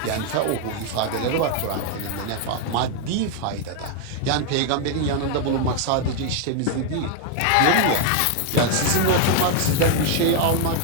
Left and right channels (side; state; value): both; different; correlation 0.01